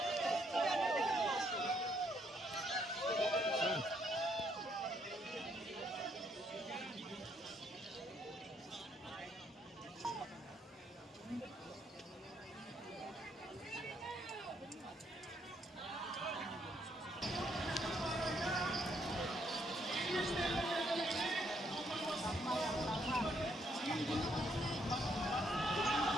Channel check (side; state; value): both; normal; correlation 0.72